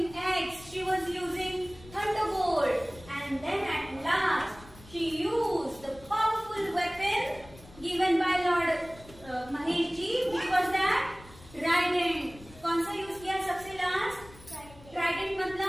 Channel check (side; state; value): left; noise; rumble, 21 dB below the sound